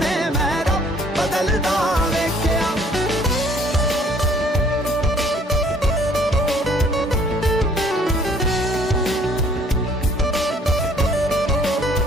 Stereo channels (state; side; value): normal; both; correlation 0.58